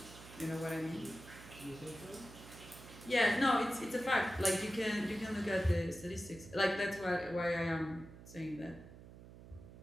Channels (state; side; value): noise; right; hum, 17 dB below the sound